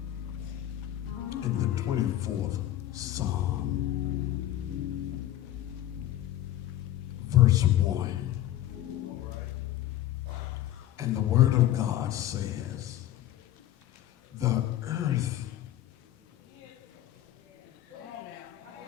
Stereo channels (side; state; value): right; quieter; 13.3 dB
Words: In the 24th Psalm, verse 1. And the word of God says, the earth